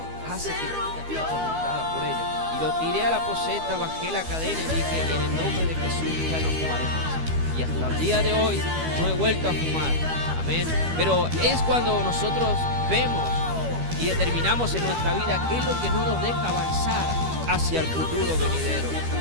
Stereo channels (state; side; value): late; left; 12 ms